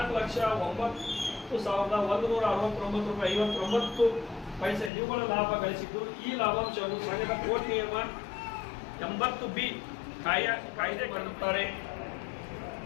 ರೂಪಾಯಿ ನಿವ್ವಳ ಲಾಭ ಗಳಿಸಿದ್ದು. ಈ ಲಾಭಾಂಶವನ್ನು ಸಂಘದ ಕೋರ್ಟ್ ನಿಯಮ 80B ಕಾಯ್ದೆ ಕರೆಯುತ್ತಾರೆ.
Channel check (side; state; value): right; drops out; at 4.9 s